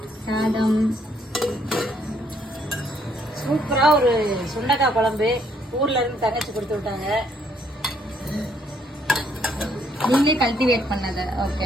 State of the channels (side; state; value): both; normal; correlation 0.69